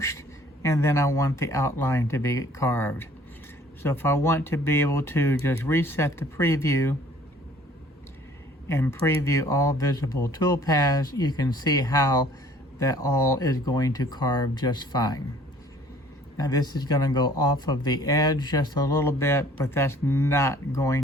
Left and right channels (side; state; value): both; normal; correlation 0.54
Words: and then I want the outline to be carved. So if I want to be able to just reset the preview and preview all visible toolpaths, you can see how that all is going to carve just fine. Now this is going to go off of the edge just a little bit, but that's not